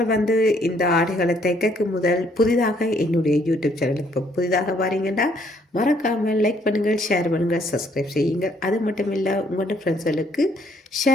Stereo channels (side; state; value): both; normal; correlation 0.66